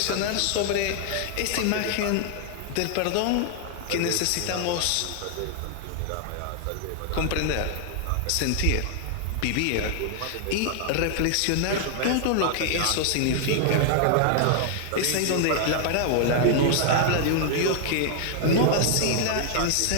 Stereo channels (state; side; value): different; both; correlation 0.00